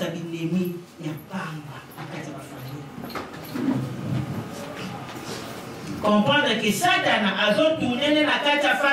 binemi ya pamba akati ba famille. Comprendre que Satan a tourné na kati ya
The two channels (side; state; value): both; identical; correlation 1.00